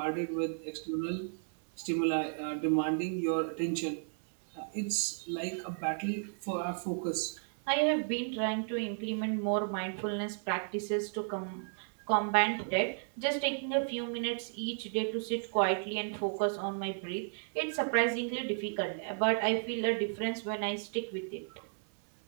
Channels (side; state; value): left; silent; 55 dB below the other